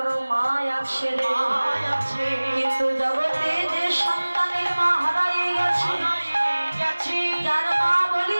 মা আছে রে, কিন্তু জগতে যে সন্তানের মা হারাই গেছে, যার মা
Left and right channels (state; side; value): inverted; both; correlation -1.00